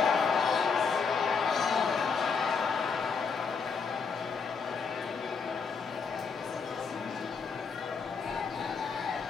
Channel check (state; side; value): quieter; right; 5.5 dB